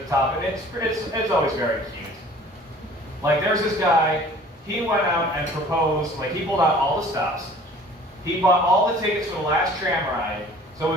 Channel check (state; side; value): normal; both; correlation 0.49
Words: top, and it's always very cute. Like, there's this guy, he went out and proposed, like, he pulled out all the stops. He bought all the tickets for the last tram ride, so it